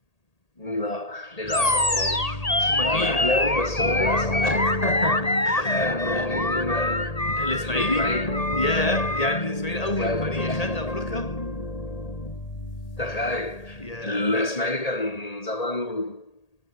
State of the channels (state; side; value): late; right; 1.8 ms